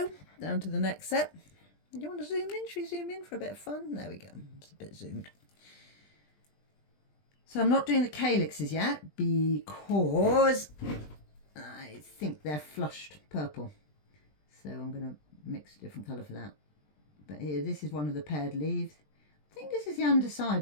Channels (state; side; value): late; right; 20 ms